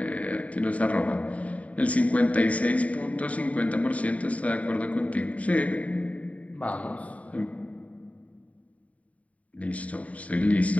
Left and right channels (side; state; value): right; late; 0.068 ms